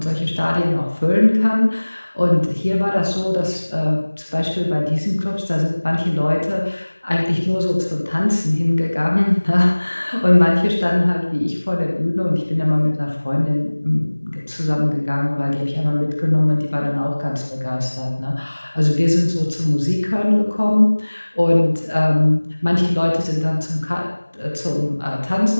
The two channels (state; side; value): inverted; both; correlation -1.00